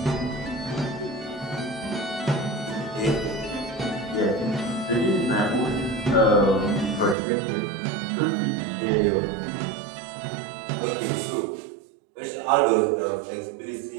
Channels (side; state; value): left; drops out; at 7.2 s